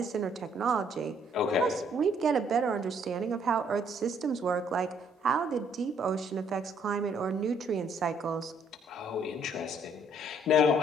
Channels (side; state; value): both; normal; correlation 0.66